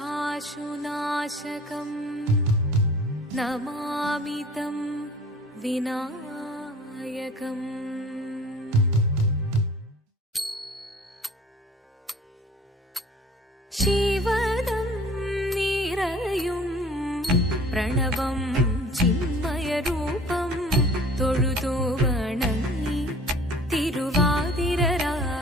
नमामि तं विनायकम्। शिवदं निरयुं प्रणवं चिन्मयरूपं തൊഴുതു വണങ്ങി തിരുവാതിരരാവിതിൽ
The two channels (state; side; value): normal; both; correlation 0.48